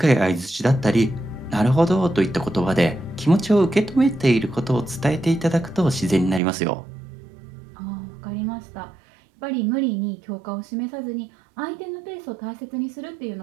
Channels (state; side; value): drops out; left; at 6.4 s